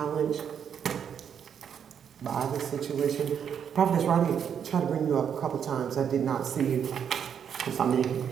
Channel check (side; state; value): left; quieter; 8.0 dB